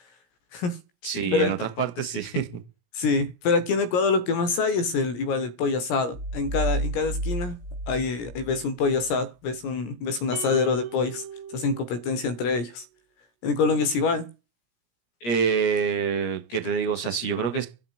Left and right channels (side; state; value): right; late; 17 ms